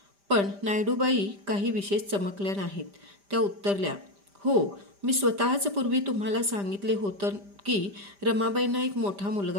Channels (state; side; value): late; left; 5.0 ms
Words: पण नायडूबाई काही विशेष चमकल्या नाहीत. त्या उत्तरल्या, हो, मी स्वतःच पूर्वी तुम्हाला सांगितले होतं की रमाबाईंना एक मोठा